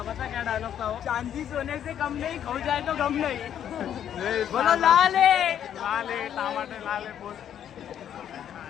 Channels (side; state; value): right; quieter; 9.8 dB